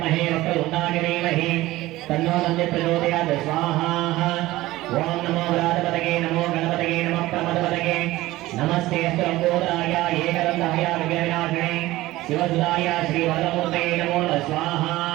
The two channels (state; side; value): quieter; left; 17.5 dB